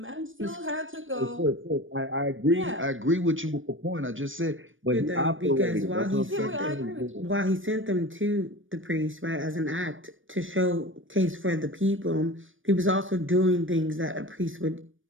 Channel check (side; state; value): left; late; 0.57 ms